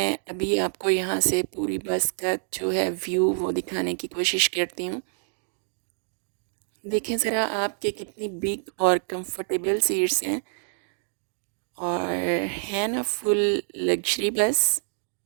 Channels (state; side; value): silent; left; digital silence